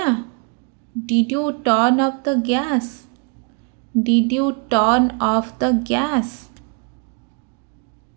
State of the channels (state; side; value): quieter; left; 35.7 dB